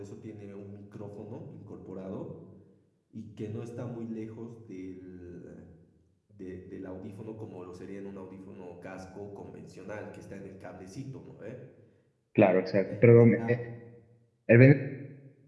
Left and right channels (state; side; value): identical; both; correlation 1.00